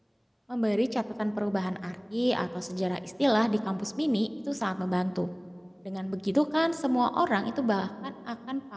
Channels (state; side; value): identical; both; correlation 1.00